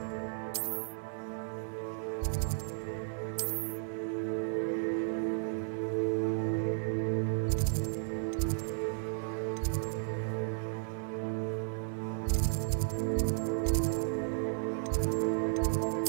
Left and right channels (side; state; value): left; silent; 55 dB below the other